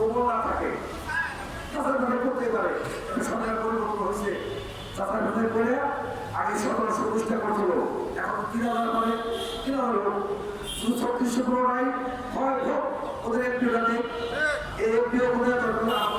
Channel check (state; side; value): identical; both; correlation 1.00